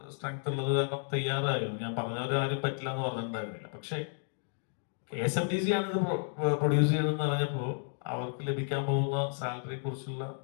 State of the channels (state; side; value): silent; right; digital silence